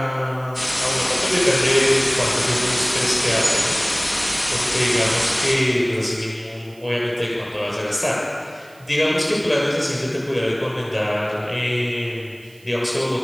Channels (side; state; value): right; noise; hiss, 27 dB below the sound